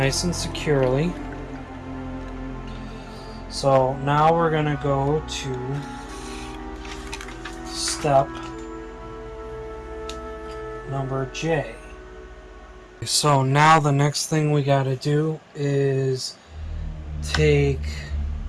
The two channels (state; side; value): identical; both; correlation 1.00